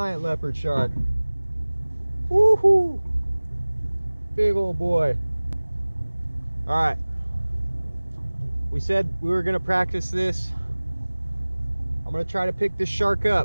leopard shark. Woohoo! Big old boy. All right, we said we were gonna practice this. I'm gonna try to pick this shark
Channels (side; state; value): both; inverted; correlation -1.00